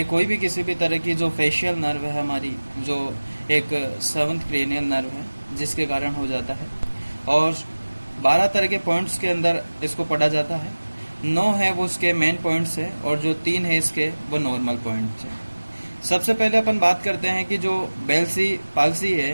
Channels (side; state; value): both; inverted; correlation -1.00